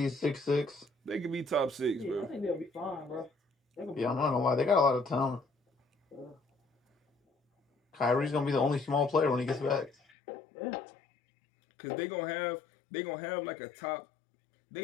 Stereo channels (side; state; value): right; drops out; at 10.0 s